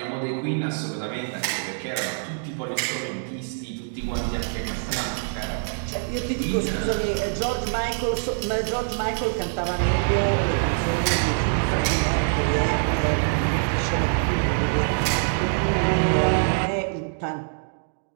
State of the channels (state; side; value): silent; left; digital silence